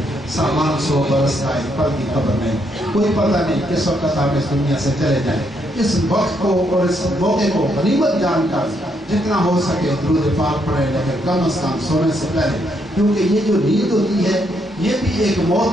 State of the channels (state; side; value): normal; both; correlation 0.75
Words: سامان 100 برس کا ایک پل کی خبر نہیں کوئی پتہ نہیں کس وقت آپ اس دنیا سے چلے جائیں اس وقت کو اور اس موقع کو غنیمت جان کر جتنا ہو سکے درود پاک پڑھیں لیکن کم از کم سونے سے پہلے کیونکہ یہ جو نیند ہوتی ہے یہ بھی ایک موت